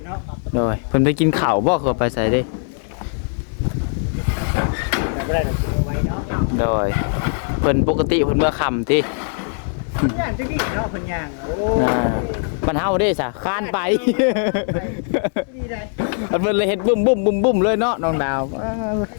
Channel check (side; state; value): right; silent; 57 dB below the other